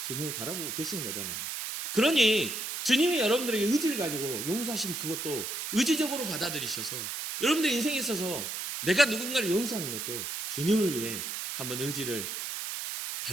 주님을 바라보고 계시는 거잖아요. 그러니 주님이 여러분들에게 의지를 가지고 용서하신 그것도 의지적으로 받아들이셔서 여러분들의 인생에 있어서 내가 누군가를 용서하는 것도 주님을 위해 한번 의지를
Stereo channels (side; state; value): right; noise; hiss, 5 dB below the sound